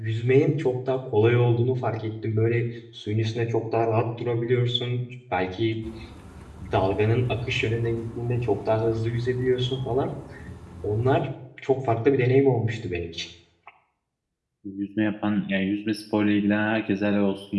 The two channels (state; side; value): identical; both; correlation 1.00